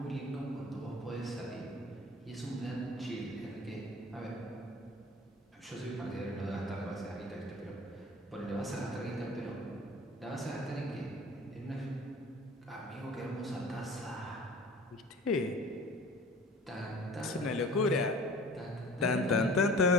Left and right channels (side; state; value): both; normal; correlation 0.44